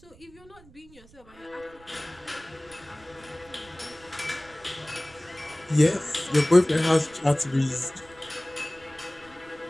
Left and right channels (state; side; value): noise; right; rumble, 25 dB below the sound